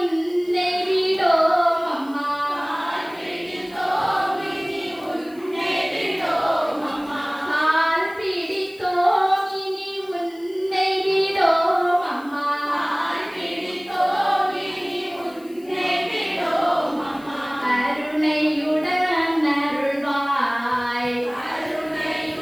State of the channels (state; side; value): noise; left; hiss, 26 dB below the sound